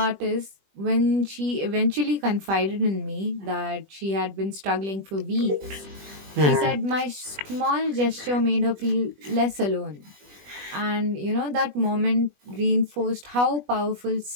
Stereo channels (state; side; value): late; left; 20 ms